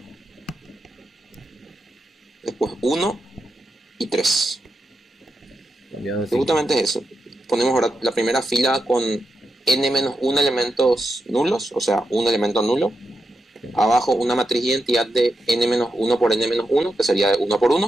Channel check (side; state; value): both; normal; correlation 0.86